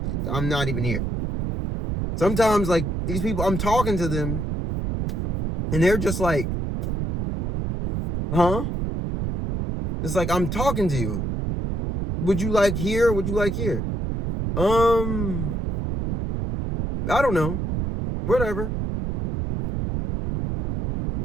not even here. Sometimes, like, these people, I'm talking to them, and they're just like, huh? It's like, I'm talking to you. Would you like here? Would you like here? I don't know. Whatever.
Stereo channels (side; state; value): right; noise; rumble, 2 dB below the sound